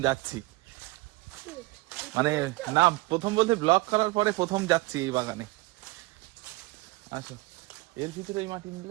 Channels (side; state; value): left; quieter; 22.3 dB